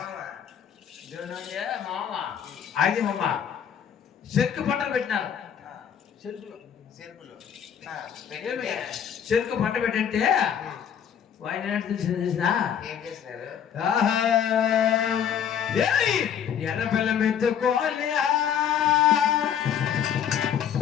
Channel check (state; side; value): quieter; right; 8.6 dB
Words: మామ అది మామ చెరుకు పంటలు పెట్టినారు. చెరుకు పంట పెట్టంటే ఆయన తెలిసిన ఎర్ర బెల్లం ఎత్తుకోవాలి